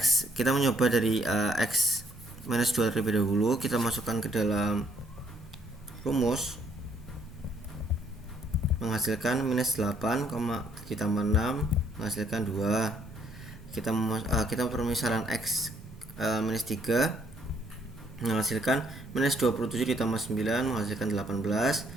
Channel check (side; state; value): both; normal; correlation 0.67